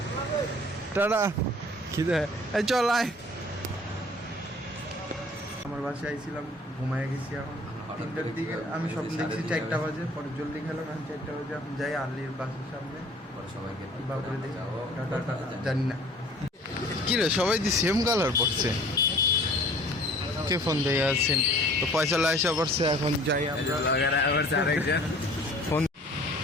টাটা খিদে এই চল আয় আমার বাসায় আইছিলাম ঘুমায় গেছি এখন 3টার দিকে আমি স্বপ্ন দেখছি 4টা বাজে পরে জলদি খেলাম এখন 4টা বাজে এখন যাই আলির বাসার সামনে সবাইকে বাপরে দেখি টাটা জানি না কি রে সবাই দি সেম কালার পড়ছে কে ফোন দিয়ে আছেন তো পয়সা লাইসা পড়ছে এখন যাই আমরা লাগার আবার আরেকজন ফোন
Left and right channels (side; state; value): both; normal; correlation 0.50